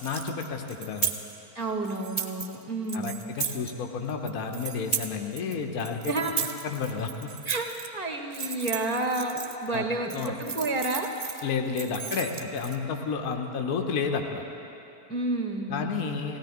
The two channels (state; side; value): late; right; 4.4 ms